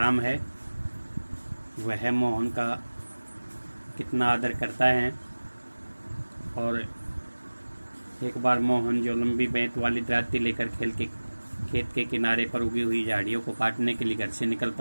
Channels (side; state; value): both; inverted; correlation -1.00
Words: है वह मोहन का कितना आदर करता है। और एक बार मोहन जो लंबी बेंत वाली दराती लेकर खेत के किनारे पर उगी हुई झाड़ियों को काटने के लिए घर से निकल